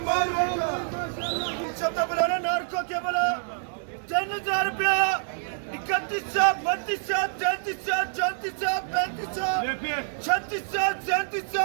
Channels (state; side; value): silent; left; digital silence